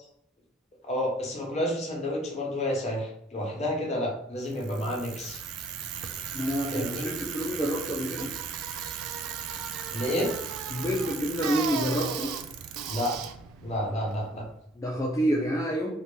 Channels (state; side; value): normal; both; correlation 0.57